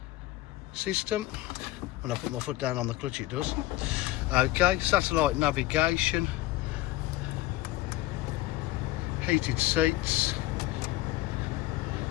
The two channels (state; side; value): quieter; right; 16.9 dB